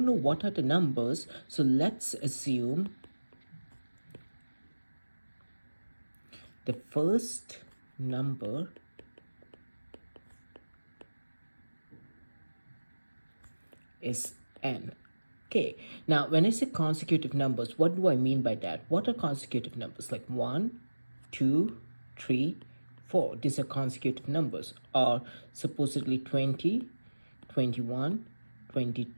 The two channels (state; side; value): inverted; both; correlation -1.00